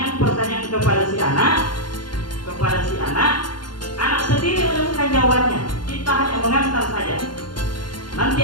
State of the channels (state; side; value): late; right; 0.71 ms